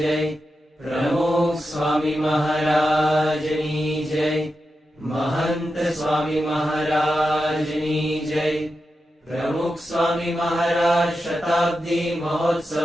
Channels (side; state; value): both; normal; correlation 0.89